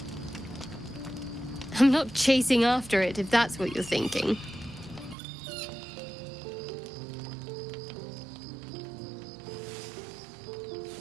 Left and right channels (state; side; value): drops out; left; at 5.2 s